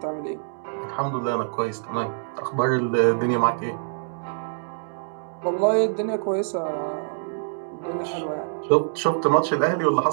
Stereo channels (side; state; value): left; silent; digital silence